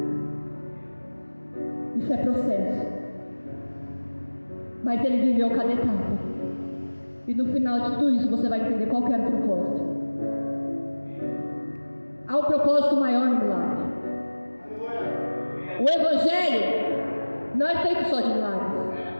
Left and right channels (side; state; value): both; inverted; correlation -1.00